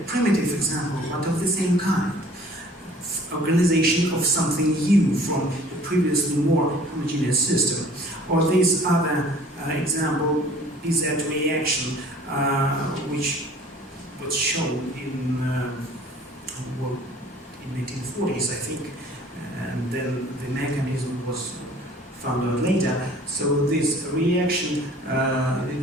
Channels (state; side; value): normal; both; correlation 0.51